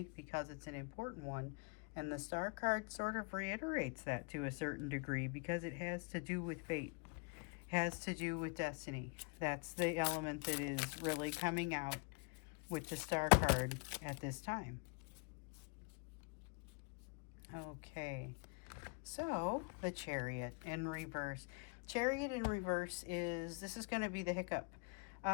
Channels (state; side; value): quieter; right; 32.6 dB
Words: because it's an important one. And the Star card sort of reiterates that to a certain degree, because it has to do with fate, has to do with destiny. That's the element that is really coming out with the Star card at this time. Okay, so the Chariot in reverse. Chariot in reverse this is going to be the hiccup.